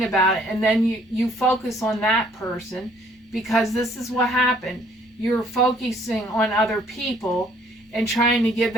about it, and then you focus on that person, because this is what happened. You're focusing on other people and trying to give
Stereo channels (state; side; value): normal; both; correlation 0.62